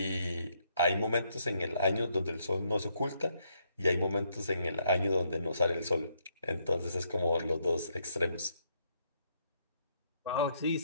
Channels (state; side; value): inverted; both; correlation -0.74